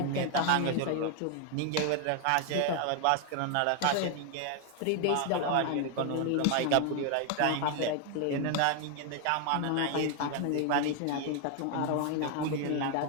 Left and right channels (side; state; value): both; different; correlation 0.00